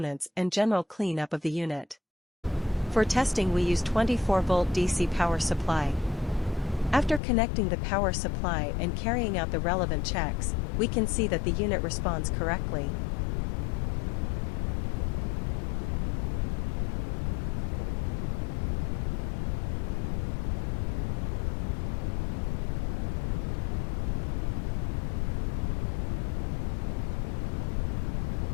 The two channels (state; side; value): drops out; right; at 7.2 s